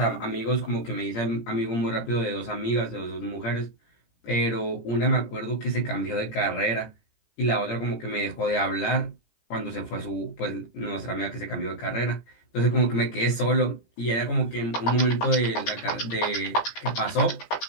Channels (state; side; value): late; right; 17 ms